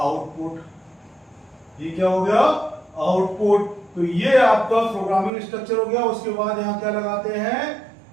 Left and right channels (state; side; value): drops out; left; at 5.3 s